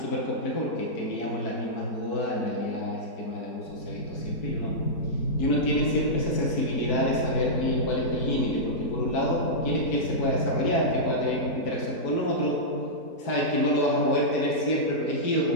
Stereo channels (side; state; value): right; late; 4.6 ms